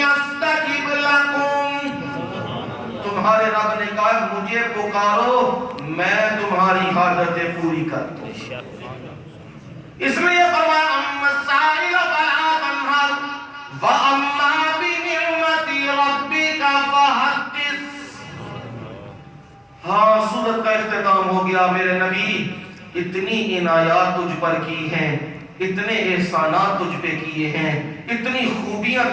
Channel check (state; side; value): identical; both; correlation 1.00